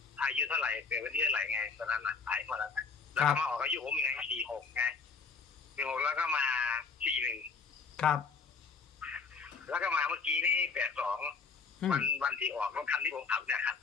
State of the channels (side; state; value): right; quieter; 5.2 dB